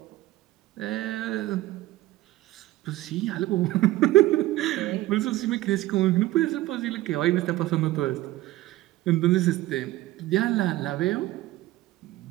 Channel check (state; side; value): quieter; left; 16.6 dB